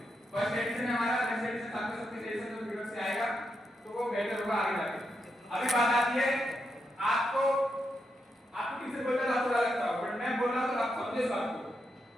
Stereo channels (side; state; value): both; normal; correlation 0.84